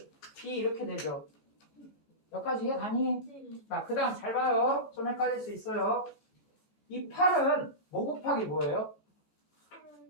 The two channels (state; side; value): late; right; 18 ms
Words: B 이렇게 되죠. 여기까지 이해 가니? 자, 그 다음 잘 봐요. 좀 헷갈릴 수 있어요. 이 8은 뭐 곱하기 뭐예요?